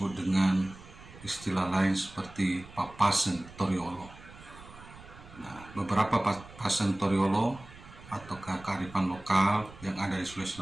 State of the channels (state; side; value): noise; right; rumble, 19 dB below the sound